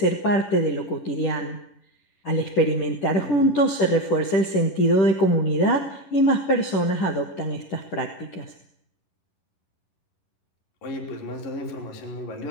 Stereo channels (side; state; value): right; late; 11 ms